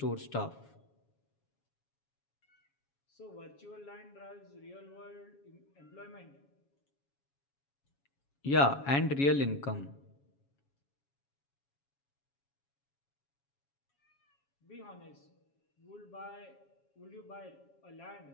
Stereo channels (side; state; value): right; late; 7.2 ms